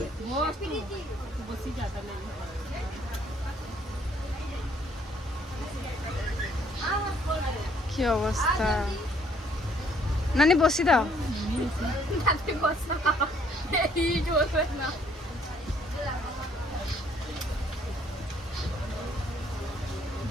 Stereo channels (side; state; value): both; normal; correlation 0.64